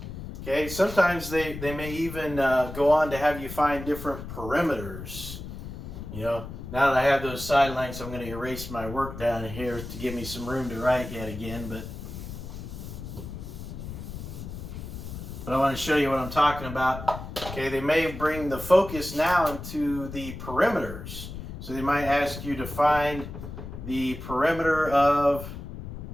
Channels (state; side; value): noise; left; rumble, 10 dB below the sound